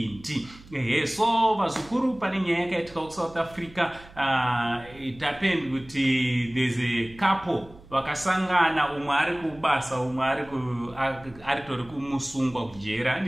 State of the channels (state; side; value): noise; right; hum, 22 dB below the sound